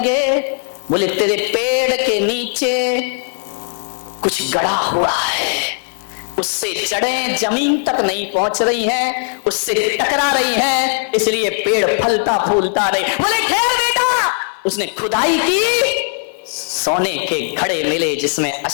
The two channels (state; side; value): silent; right; 68 dB below the other